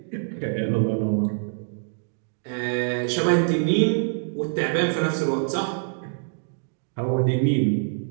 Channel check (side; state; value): left; silent; digital silence